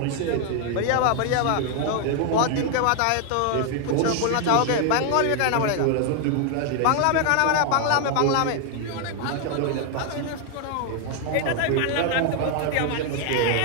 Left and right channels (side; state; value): both; different; correlation 0.00